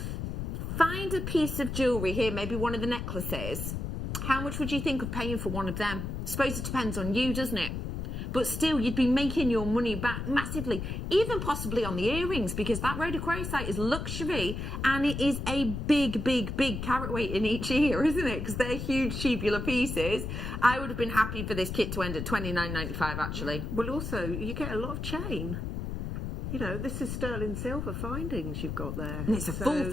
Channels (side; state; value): left; noise; rumble, 4 dB below the sound